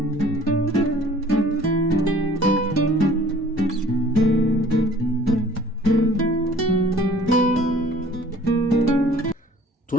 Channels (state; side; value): normal; both; correlation 0.51